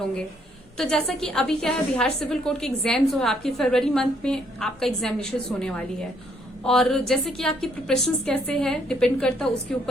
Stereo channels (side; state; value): both; normal; correlation 0.69